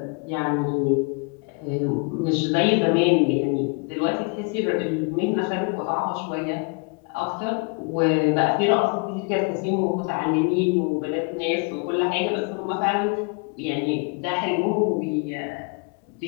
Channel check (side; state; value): right; quieter; 33.4 dB